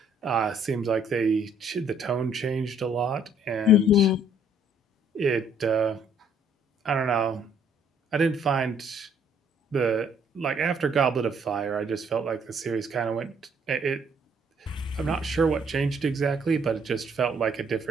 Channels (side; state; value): both; normal; correlation 0.64